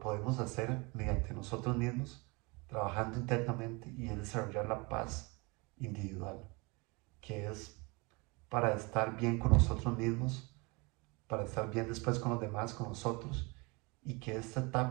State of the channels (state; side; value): quieter; left; 27.7 dB